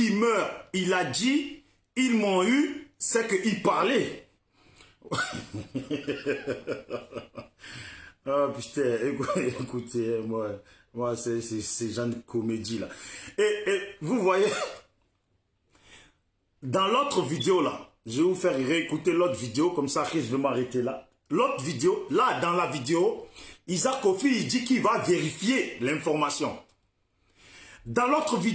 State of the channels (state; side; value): identical; both; correlation 1.00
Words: meure, il a dit « ils m'ont eu », c'est qu'il parlait. Ah putain, écoutez, moi c'est genre de comédie là. Et vous voyez, dans l'autre vidéo là, Je vais vous faire réécouter l'autre vidéo, comme ça, je vais m'arrêter là. L'autre vidéo, là, dans la vidéo, Isaac Kofi, il dit qu'il va vérifier l'information. Dans l'autre